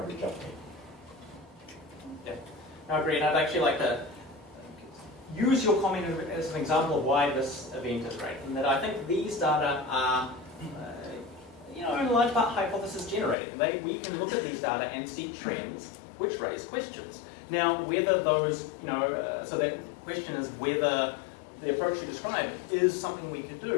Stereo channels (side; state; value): right; drops out; at 13.4 s